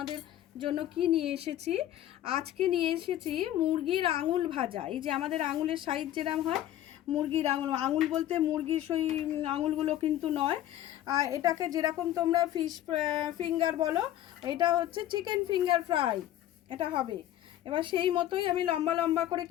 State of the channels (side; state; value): right; quieter; 12.8 dB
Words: জন্য কি নিয়ে এসেছি। আজকে নিয়ে এসেছি মুরগির আঙুল ভাজা। এই যে আমাদের আঙুলের সাইজ যেরকম হয়, মুরগির আঙুল, আঙুল বলতে মুরগির সেই আঙুলগুলো কিন্তু নয়, এটাকে যেরকম তোমরা ফিশ ফিঙ্গার বলো, এটা হচ্ছে চিকেন ফিঙ্গার ফ্রাই এটা হবে। এবার সেই মতোই আমি লম্বা লম্বা করে